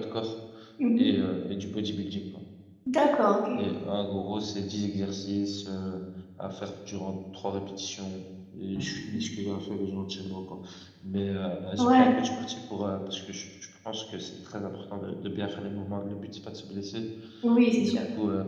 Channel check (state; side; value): identical; both; correlation 1.00